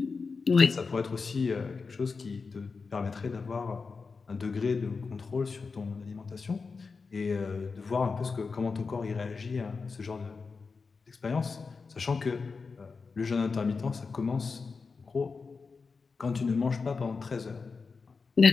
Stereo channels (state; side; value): quieter; right; 4.7 dB